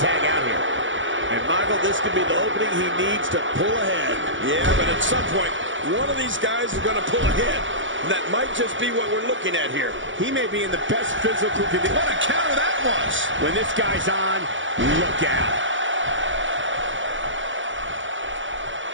tag out here. And Michael, this could be the opening he needs to pull ahead. Yeah, but at some point, one of these guys is going to pull ahead. That might just be what we're looking at here. He may be in the best physical condition. What a counter that was. When this guy's on, look out.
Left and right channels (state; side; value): late; left; 0.56 ms